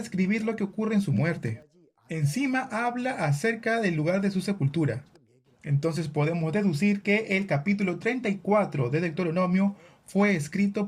lo que ocurre en su muerte. Encima habla acerca del lugar de su sepultura. Entonces podemos deducir que el capítulo 34 de Deuteronomio fue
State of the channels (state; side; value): identical; both; correlation 1.00